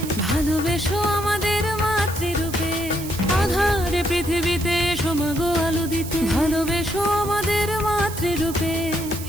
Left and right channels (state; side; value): noise; right; hiss, 12 dB below the sound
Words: ভালোবেসো আমাদের মাতৃরূপে। আধারে পৃথিবীতে সমাগো আলো দিতে, ভালোবেসো আমাদের মাতৃরূপে।